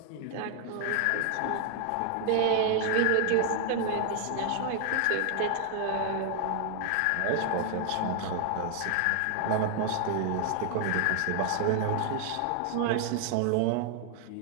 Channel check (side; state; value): both; different; correlation 0.00